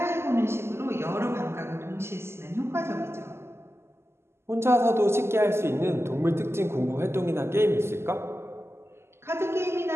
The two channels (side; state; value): left; late; 0.12 ms